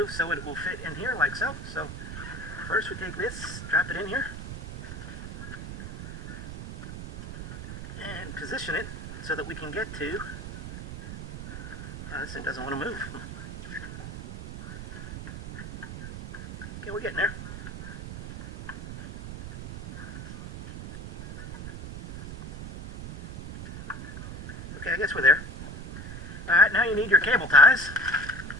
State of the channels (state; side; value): noise; right; rumble, 9 dB below the sound